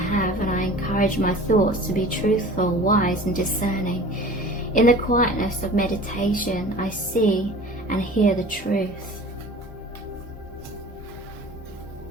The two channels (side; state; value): both; normal; correlation 0.42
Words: and I encourage my thoughts to be truthful, wise and discerning. In the quietness of meditation, I see and hear the truth.